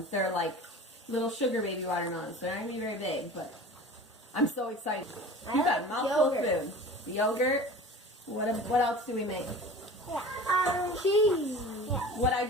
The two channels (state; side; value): normal; both; correlation 0.38